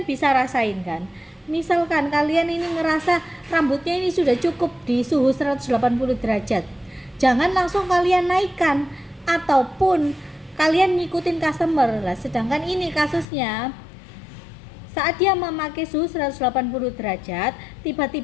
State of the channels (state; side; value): drops out; right; at 13.2 s